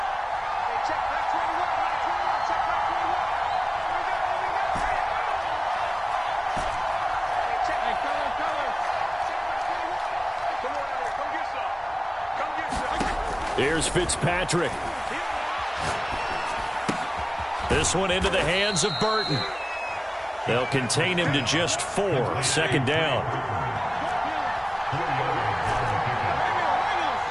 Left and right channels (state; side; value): identical; both; correlation 1.00